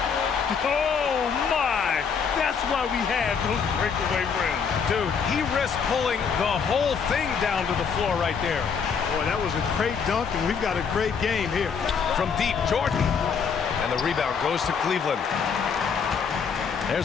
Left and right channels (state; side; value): quieter; right; 6.3 dB